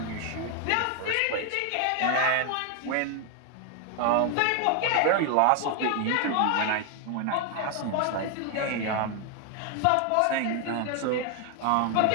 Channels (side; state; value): both; different; correlation 0.01